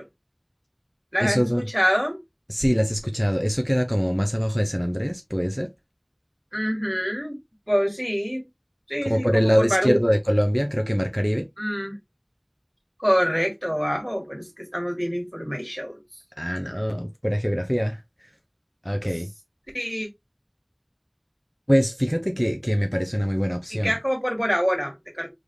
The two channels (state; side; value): identical; both; correlation 1.00